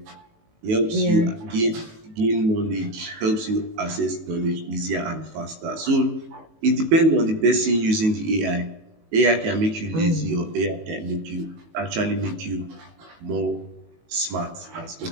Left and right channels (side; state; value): left; late; 18 ms